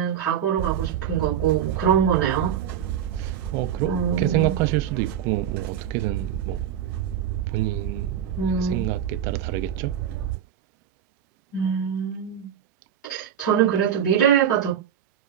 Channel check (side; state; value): left; quieter; 9.3 dB